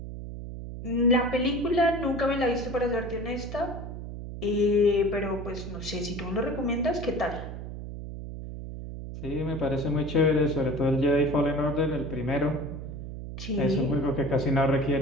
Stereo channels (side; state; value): right; noise; hum, 9 dB below the sound